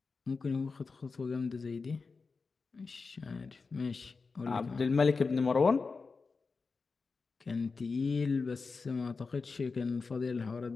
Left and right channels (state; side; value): quieter; right; 4.5 dB